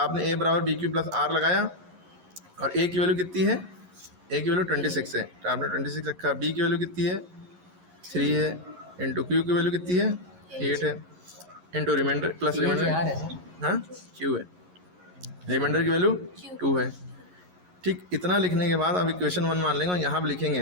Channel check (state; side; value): late; left; 11 ms